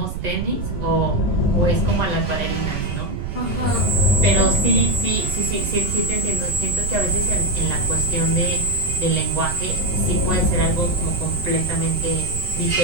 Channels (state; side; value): noise; right; rumble, 5 dB below the sound